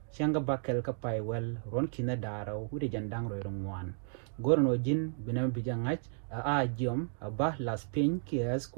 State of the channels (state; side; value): silent; left; 56 dB below the other